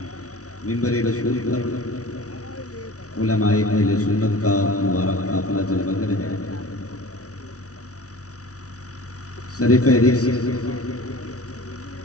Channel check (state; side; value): late; right; 0.66 ms